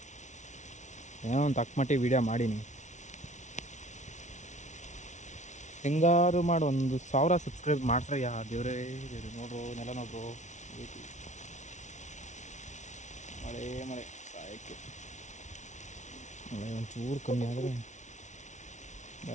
ಏನೋ ಒಂದು ತಕ್ಕಮಟ್ಟಿಗೆ ವೀಡಿಯೋ ಮಾಡೀನಿ. ಹೆಂಗಾರು ಮಾಡಿ ಒಂದು 1000 ಸಬ್ಸ್ಕ್ರೈಬ್ ಮಾಡ್ಸ್ರಯ್ಯ ದೇವ್ರೇ ದೇವ್ರು. ನೋಡ್ರು ನೆಲ ನೋಡ್ರು, ಮಳೆ ಮಳೆ ಸಾಯಕ್ಕೆ. ಮಳೆ ಒಂಚೂರು ಕಮ್ಮಿ ಆದರೆ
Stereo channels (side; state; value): right; late; 0.35 ms